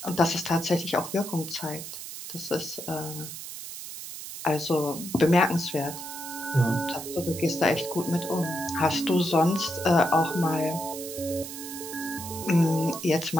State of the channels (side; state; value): right; noise; hiss, 10 dB below the sound